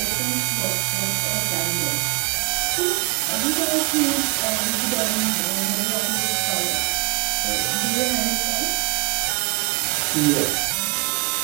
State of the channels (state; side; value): quieter; left; 30.0 dB